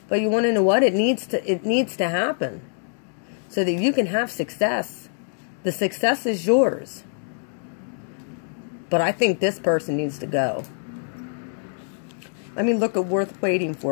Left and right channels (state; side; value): silent; right; digital silence